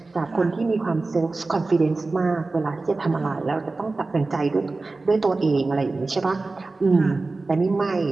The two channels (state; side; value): quieter; left; 3.5 dB